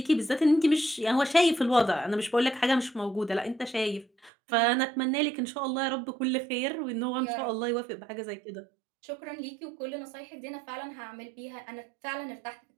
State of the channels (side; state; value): left; drops out; at 4.3 s